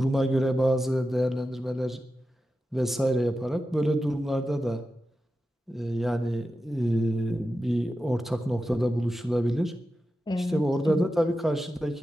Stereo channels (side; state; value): both; normal; correlation 0.91